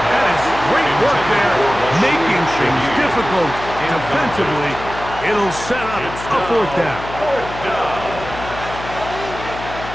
That is great work there, making things difficult defensively. It'll set up a fourth down.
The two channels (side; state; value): left; noise; hum, 11 dB below the sound